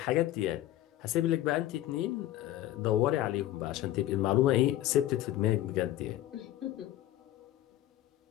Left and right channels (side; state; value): right; quieter; 13.9 dB